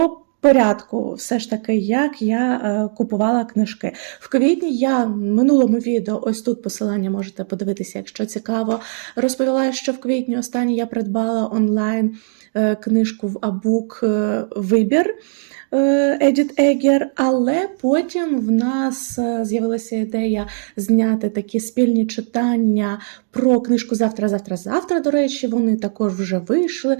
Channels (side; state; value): left; silent; digital silence